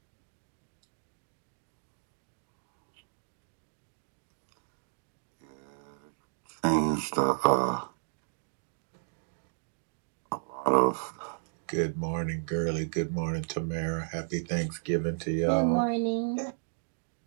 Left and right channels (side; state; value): left; silent; digital silence